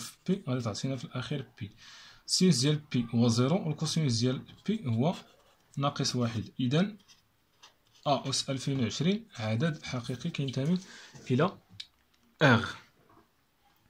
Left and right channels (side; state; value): both; identical; correlation 1.00